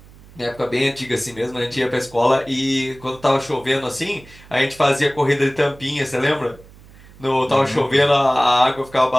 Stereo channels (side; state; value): right; noise; hum, 23 dB below the sound